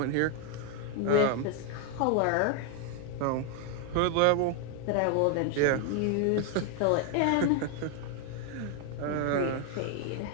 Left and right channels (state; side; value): different; both; correlation 0.01